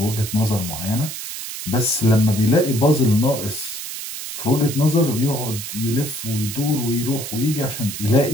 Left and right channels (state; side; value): noise; right; hiss, 8 dB below the sound